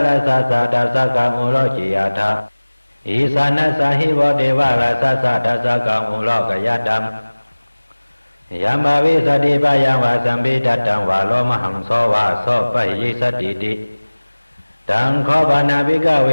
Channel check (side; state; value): both; inverted; correlation -1.00